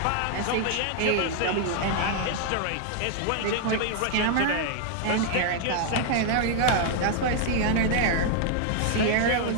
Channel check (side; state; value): both; different; correlation 0.00